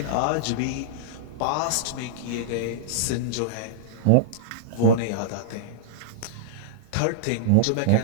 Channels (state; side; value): different; both; correlation -0.02